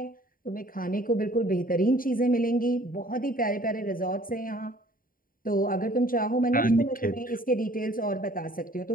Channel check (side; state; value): right; late; 0.41 ms